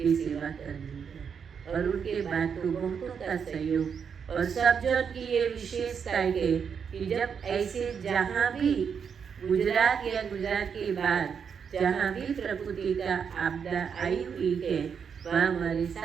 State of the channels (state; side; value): quieter; left; 6.8 dB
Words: सेवा करनी है। और उनके बाद तो बहुतों का सहयोग और सब जन की ये विशेषता है कि जब ऐसे जहाँ भी गुजरात या गुजरात के बाद जहाँ भी प्रकृति का आपदा आई हुई है, वहाँ हमारे